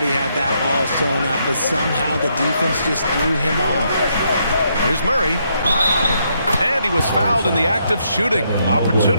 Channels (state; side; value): inverted; both; correlation -0.76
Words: he had that all sewn up, but somehow the defense just threw him off. Here's Murray. And he was fouled in the act of shooting.